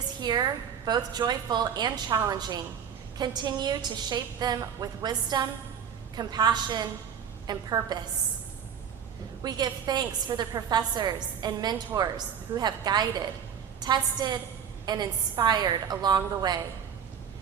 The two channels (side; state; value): left; quieter; 8.0 dB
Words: here, both joyful and challenging, continue to shape them with wisdom, compassion, and purpose. We give thanks for the professors and mentors who have guided, tested, and inspired along the way.